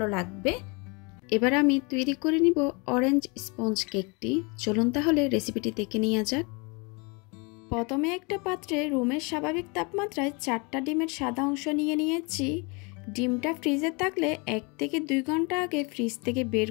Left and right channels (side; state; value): right; quieter; 30.2 dB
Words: লাগবে। এবার আমি তৈরি করে নিব অরেঞ্জ স্পঞ্জ কেকটি। চলুন তাহলে রেসিপিটি দেখে নেওয়া যাক। প্রথমে একটা পাত্রে রুমের স্বাভাবিক তাপমাত্রায় 4টা ডিমের সাদা অংশ নিয়ে নিয়েছি। ডিমটা ফ্রিজে থাকলে 1 থেকে 2 ঘন্টা আগে ফ্রিজ থেকে বের